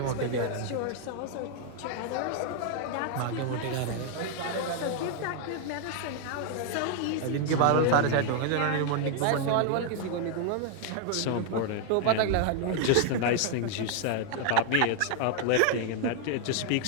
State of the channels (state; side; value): different; both; correlation 0.00